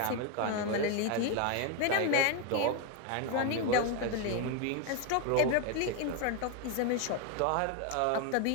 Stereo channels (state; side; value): different; both; correlation 0.02